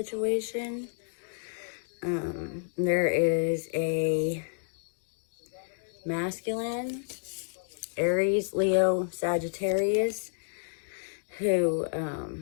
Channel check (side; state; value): right; silent; digital silence